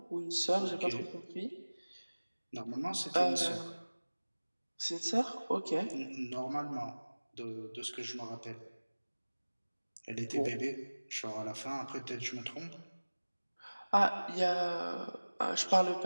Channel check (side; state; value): both; inverted; correlation -1.00